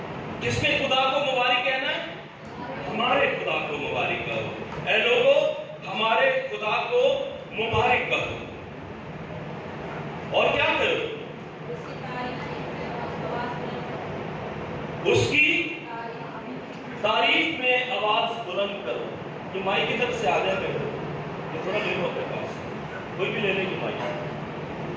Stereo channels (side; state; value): both; identical; correlation 1.00